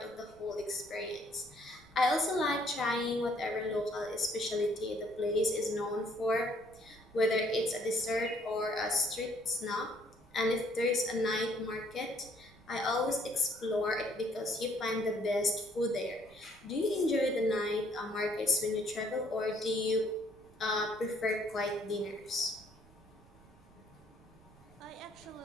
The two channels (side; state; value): right; noise; rumble, 26 dB below the sound